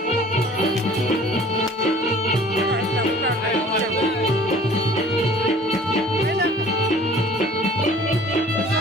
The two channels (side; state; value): both; normal; correlation 0.50